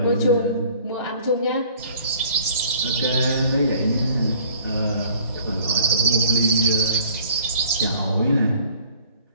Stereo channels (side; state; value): both; inverted; correlation -0.53